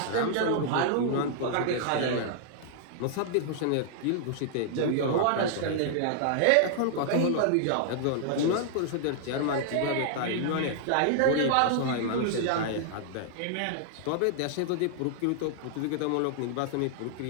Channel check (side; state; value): both; different; correlation -0.01